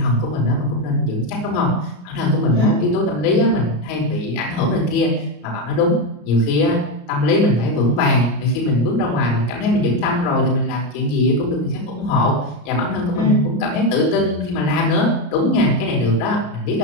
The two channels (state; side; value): late; right; 34 ms